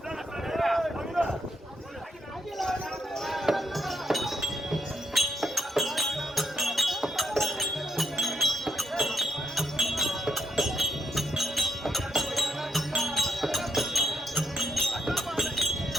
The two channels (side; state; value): both; normal; correlation 0.78